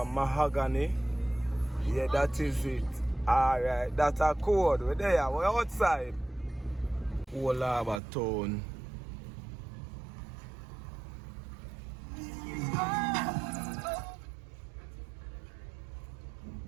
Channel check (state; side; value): drops out; left; at 8.0 s